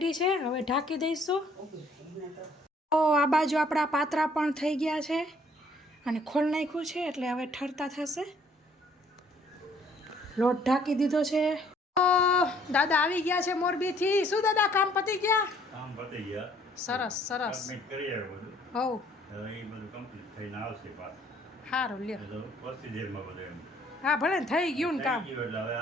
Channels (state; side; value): normal; both; correlation 0.61